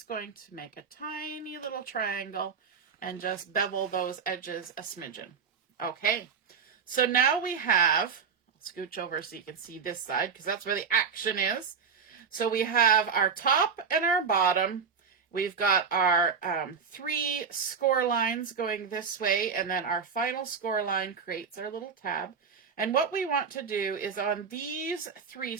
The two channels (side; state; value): left; quieter; 6.2 dB